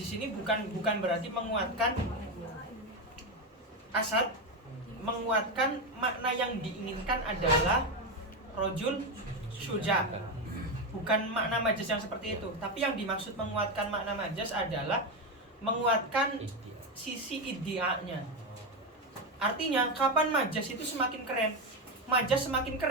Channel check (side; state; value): both; normal; correlation 0.12